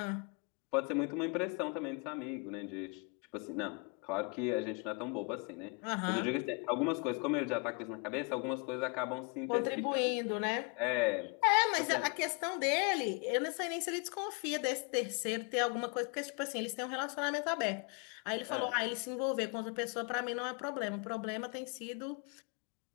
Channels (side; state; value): right; quieter; 34.0 dB